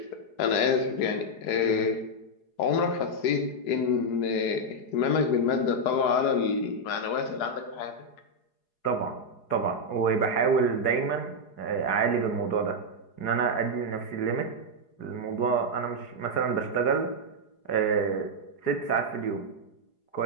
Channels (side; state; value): right; late; 4.8 ms